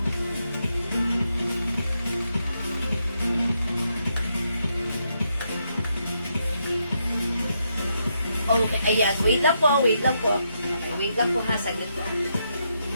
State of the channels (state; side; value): inverted; both; correlation -0.80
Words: Okay, ayan. Wait lang po, wait lang po. Okay, wait lang po ha, saglit po.